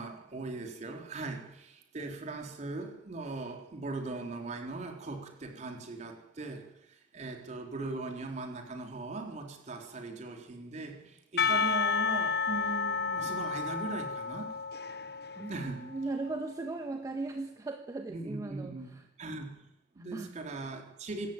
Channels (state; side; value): normal; both; correlation 0.19